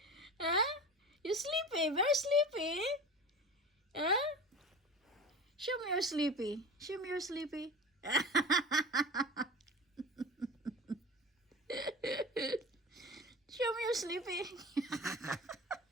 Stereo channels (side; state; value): both; normal; correlation 0.33